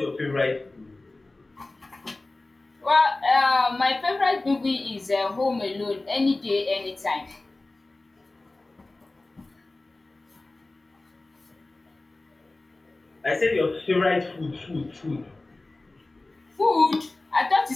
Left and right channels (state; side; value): quieter; right; 3.0 dB